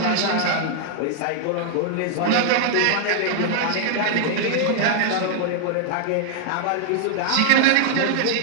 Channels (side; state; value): both; different; correlation -0.01